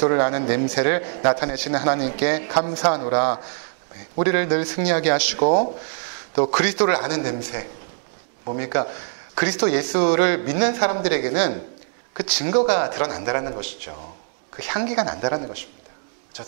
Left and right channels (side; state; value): left; silent; digital silence